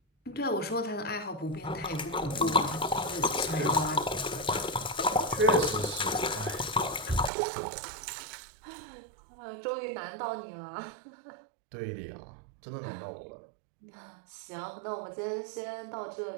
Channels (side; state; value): left; drops out; at 7.3 s